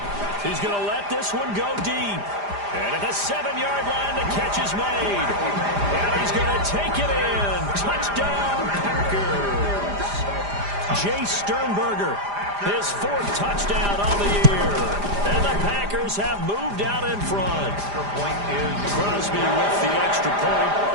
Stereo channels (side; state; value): left; late; 5.0 ms